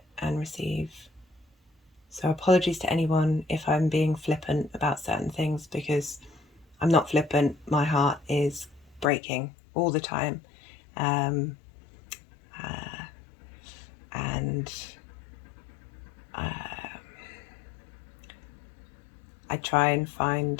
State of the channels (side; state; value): right; drops out; at 9.1 s